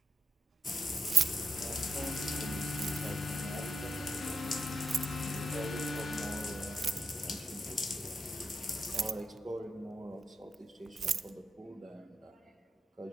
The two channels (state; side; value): normal; both; correlation 0.85